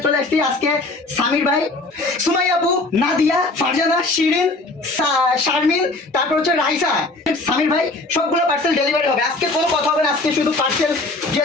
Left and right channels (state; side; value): quieter; right; 3.1 dB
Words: চলে আসছি। আজকে সামির ভাই, সুমাইয়া আপু, নাদিয়া, ফারজানা, শিরিন, শারমিন, তারপর হচ্ছে রাইসা, সামির ভাই সবগুলো পার্সেল ডেলিভারি হবে। আজকে কোনো কথা হবে না, আজকে শুধু পার্সেল